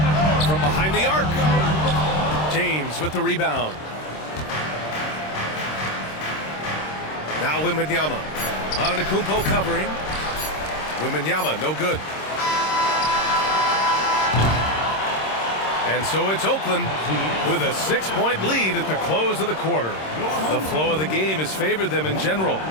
From behind the arc. James with the rebound. Now Wembanyama. Antetokounmpo covering. Wembanyama no good. And so it's Oakland with a 6-point lead at the close of the quarter. The flow of the game has favored them in general.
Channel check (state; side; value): late; right; 26 ms